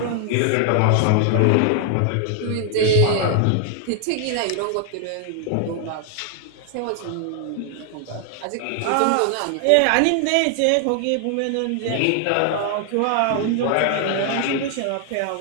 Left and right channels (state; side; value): different; both; correlation 0.00